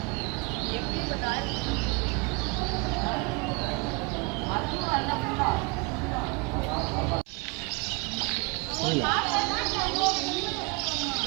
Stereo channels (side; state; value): left; quieter; 29.4 dB